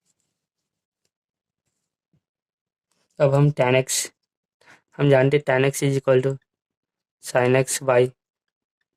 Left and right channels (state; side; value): identical; both; correlation 1.00